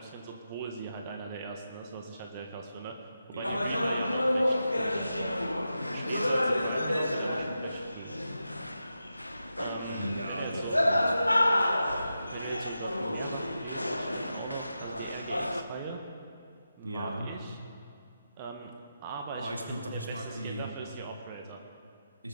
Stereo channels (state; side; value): inverted; both; correlation -0.88